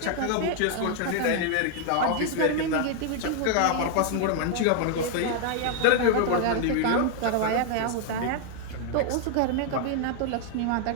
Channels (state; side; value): different; both; correlation 0.00